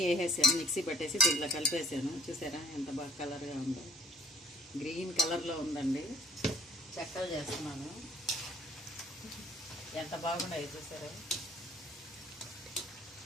వేసేసాను, మిక్సీ పట్టేసి దీంట్లో కలిపేసాను. చూసారా ఎంత బాగా కలర్గా ఉందో, గ్రీన్ కలర్లో ఉందండి. చెక్కలు చేస్తున్నాను, ఎంత బాగున్నాయి చూసారా,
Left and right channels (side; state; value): both; normal; correlation 0.57